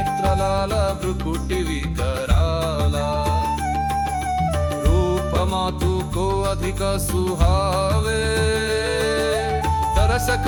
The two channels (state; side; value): identical; both; correlation 1.00